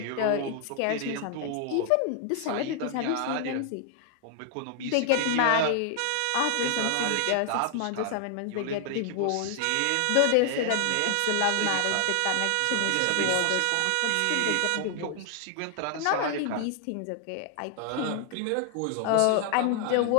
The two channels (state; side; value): different; both; correlation 0.00